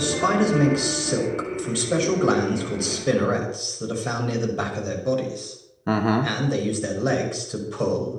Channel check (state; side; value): identical; both; correlation 1.00